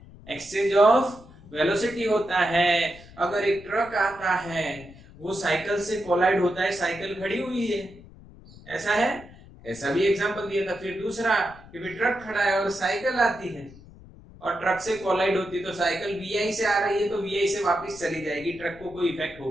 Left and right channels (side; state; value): left; noise; rumble, 20 dB below the sound